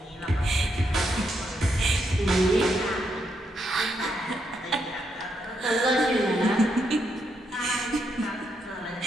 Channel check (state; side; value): normal; both; correlation 0.79